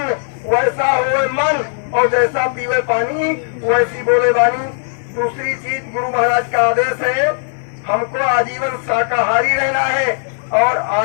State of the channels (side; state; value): right; silent; 58 dB below the other